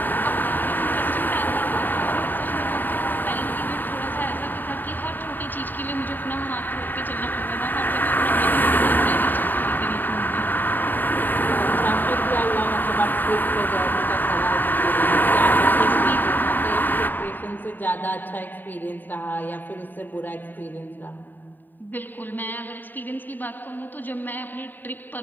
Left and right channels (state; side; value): late; right; 0.090 ms